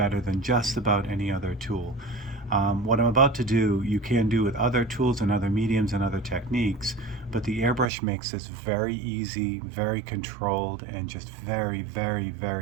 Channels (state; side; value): drops out; left; at 7.9 s